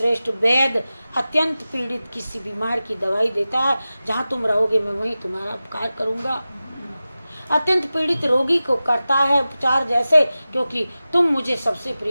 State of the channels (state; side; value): inverted; both; correlation -0.95